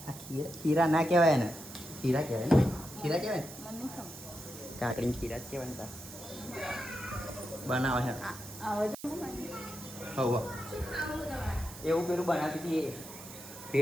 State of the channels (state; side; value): noise; right; hiss, 14 dB below the sound